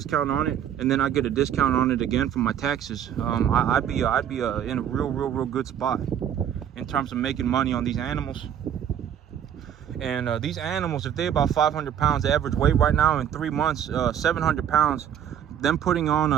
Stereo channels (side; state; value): left; quieter; 9.5 dB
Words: on it, and then I get a discount on it again from my taxes, I'd be in a real good spot in terms of making money on these animals. And these animals, if they're about 500 pounds average weight right now, in 3 months, 700 pounds, them putting on